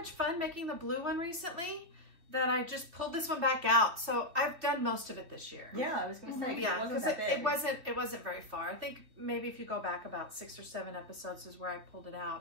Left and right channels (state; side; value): late; left; 3.1 ms